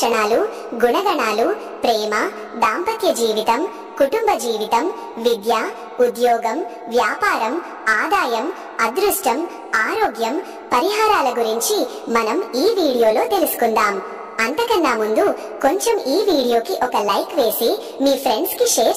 గుణగణాలు, ప్రేమ, దాంపత్య జీవితం, కుటుంబ జీవితం, విద్య, ఉద్యోగం, వ్యాపారం, ఆదాయం, అదృష్టం, ఆరోగ్యం, పరిహారాల గురించి మనం ఈ వీడియోలో తెలుసుకుందాం. అంతకన్నా ముందు కొంచెం ఈ వీడియోకి ఒక లైక్ వేసి మీ ఫ్రెండ్స్ కి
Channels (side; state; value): both; identical; correlation 1.00